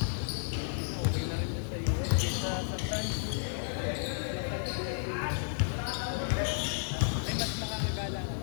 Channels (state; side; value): silent; right; digital silence